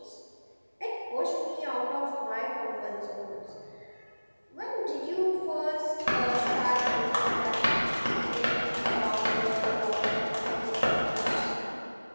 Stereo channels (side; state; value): both; inverted; correlation -1.00